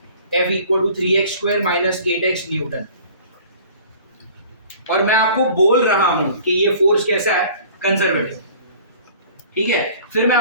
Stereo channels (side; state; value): both; inverted; correlation -0.48